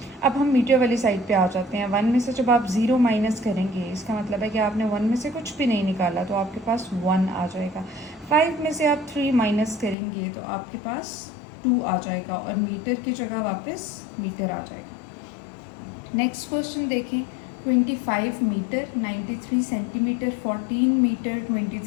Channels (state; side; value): drops out; right; at 10.0 s